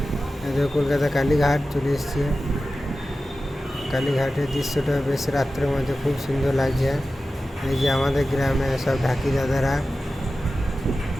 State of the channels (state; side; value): normal; both; correlation 0.94